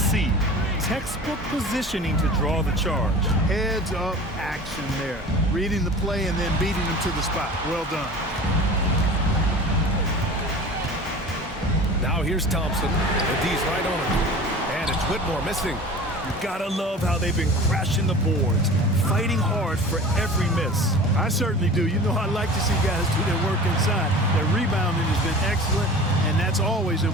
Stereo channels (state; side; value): normal; both; correlation 0.39